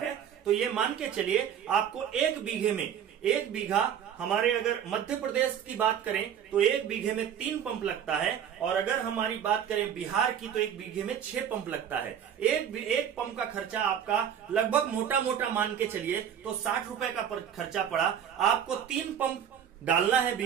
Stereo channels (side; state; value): left; quieter; 9.0 dB